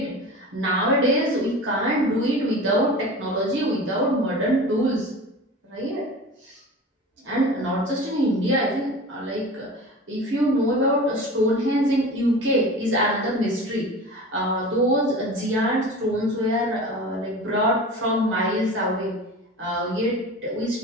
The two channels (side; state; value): both; normal; correlation 0.35